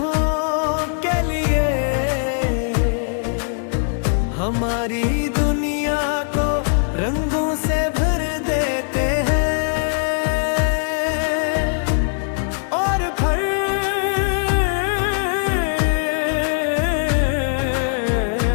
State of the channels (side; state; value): right; silent; digital silence